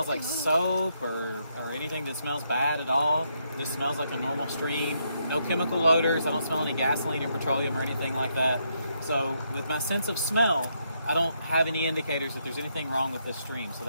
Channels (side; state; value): both; inverted; correlation -0.77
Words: like soap or anything that smells bad at all. This smells like a normal stream. No chemical odors. I don't smell any gasoline or petroleum or anything like that. So with my sense of smell, I don't have any indicators that there's anything wrong with this stream. So